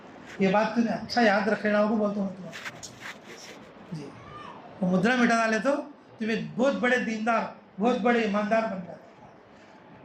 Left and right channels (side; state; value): both; identical; correlation 1.00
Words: یہ بات تمہیں اچھا یاد رکھ لینا ہوگا بولتا ہوں تمہیں جی. وہ مدرا مٹا ڈالے تو تمہیں بہت بڑے دیندار بہت بڑے ایماندار بن جاتے.